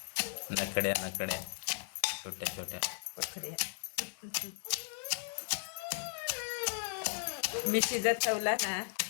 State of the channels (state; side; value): silent; right; 54 dB below the other